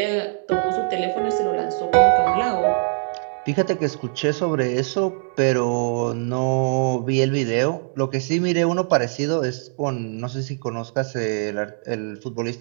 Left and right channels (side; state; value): left; silent; 64 dB below the other